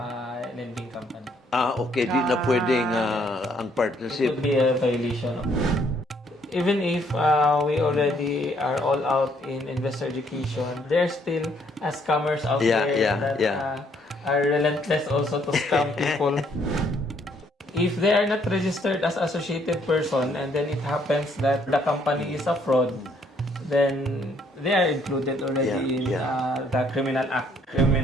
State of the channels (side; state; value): both; normal; correlation 0.67